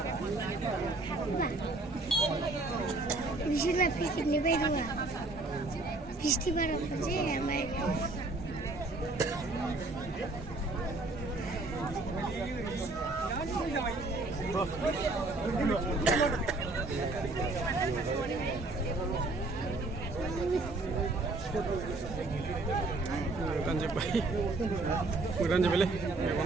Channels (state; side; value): quieter; left; 3.2 dB